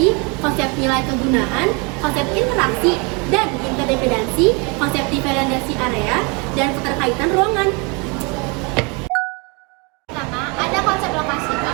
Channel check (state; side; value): quieter; left; 30.8 dB